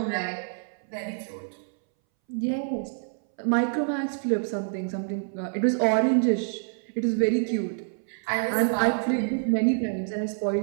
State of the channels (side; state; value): left; silent; 60 dB below the other